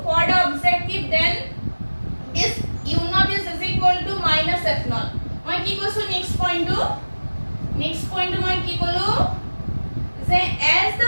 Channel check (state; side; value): inverted; both; correlation -1.00